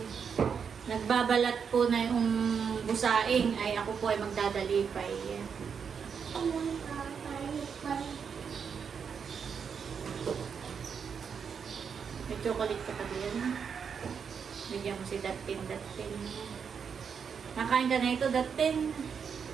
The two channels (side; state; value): left; quieter; 6.6 dB